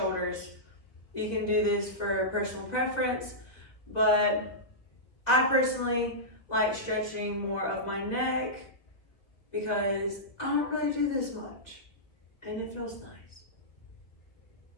You can do this for personal preference, but I personally like stretching more of my neck because I don't really do this much, and it feels nice.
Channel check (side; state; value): right; late; 1.7 ms